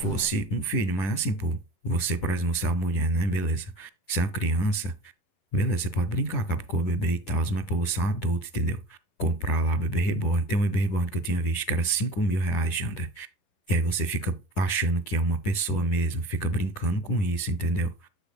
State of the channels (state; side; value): late; right; 10 ms